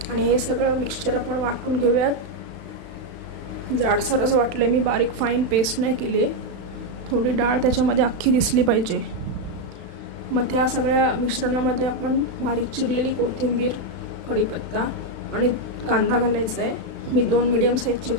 आणि हे सगळं मिक्सचर आपण वाटून घेऊयात. जाडसरच वाटले मी, बारीक फाईन पेस्ट नाही केली. थोडी डाळ त्याच्यामध्ये अख्खी दिसली पाहिजे. मग त्या सगळ्या मिश्रणामध्ये आपण बारीक चिरलेली कोथिंबीर, कढीपत्ता आणि कांदा घालायचा आहे. मी 2 मीडियम साईजचे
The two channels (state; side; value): late; left; 36 ms